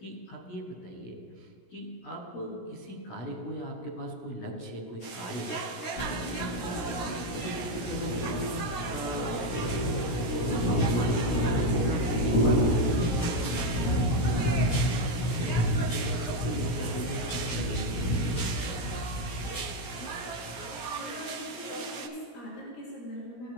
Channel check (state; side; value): late; right; 17 ms